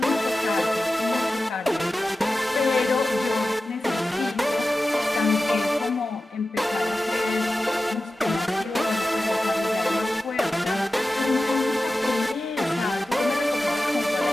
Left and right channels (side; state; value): both; normal; correlation 0.94